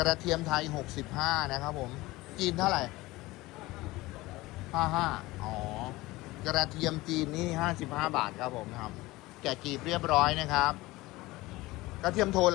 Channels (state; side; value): quieter; right; 19.8 dB